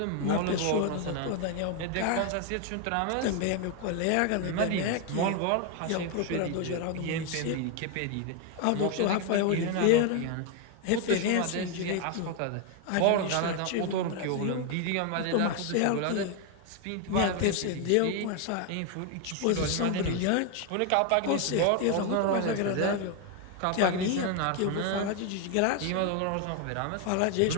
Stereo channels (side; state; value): both; different; correlation 0.01